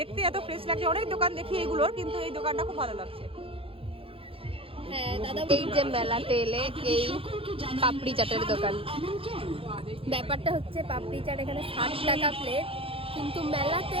এত ফ্রেশ লাগছে। অনেক দোকান দেখি এগুলোর, কিন্তু এই দোকানটা খুব ভালো লাগছে। হ্যাঁ দাদা, এই যে মেলাতে এলে এই পাপড়ি চাটের দোকান। ব্যাপারটা হচ্ছে পাপড়ি চাট এখানে 60 টাকা প্লেট, কিন্তু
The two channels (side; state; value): left; late; 0.27 ms